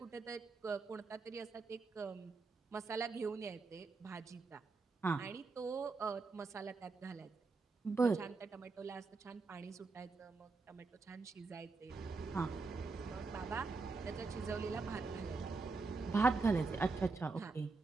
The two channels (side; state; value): left; quieter; 4.1 dB